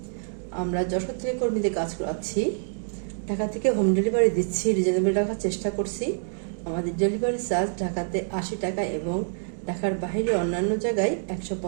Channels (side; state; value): left; silent; digital silence